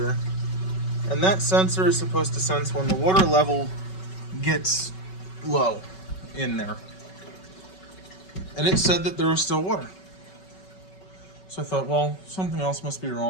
and that sensor is supposed to sense when the water level gets low in there. And it said that there was still water. So I thought, well, something else must be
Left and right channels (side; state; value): right; late; 5.3 ms